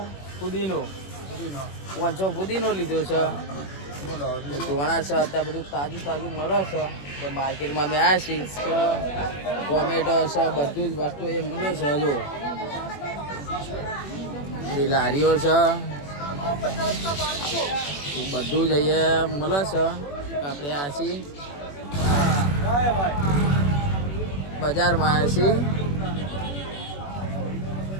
ફુદીનો 500 ફુદીનો લીધો છે। ધોણા છે, અત્યારે બધું તાજું તાજું મળે છે। તો માર્કેટમાં અમે આવ્યા છીએ। ટોમેટો છે, બધું જ વસ્તુ એ મળે છે। જો બધી લારીઓ છે, બધું જ અહીંયા મળે છે। આપણે આ છીએ બજારમાં આવ્યા છીએ।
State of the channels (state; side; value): late; right; 21 ms